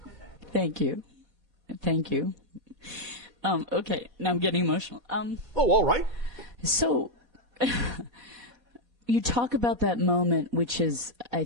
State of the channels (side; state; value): right; late; 1.8 ms